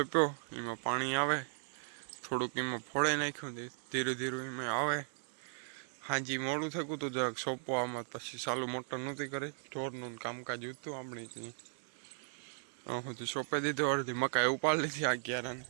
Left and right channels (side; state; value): left; silent; 53 dB below the other